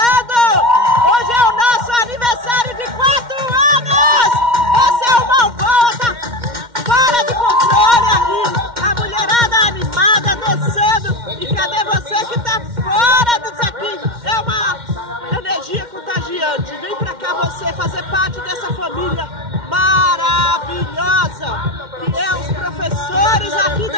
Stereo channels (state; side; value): late; left; 2.1 ms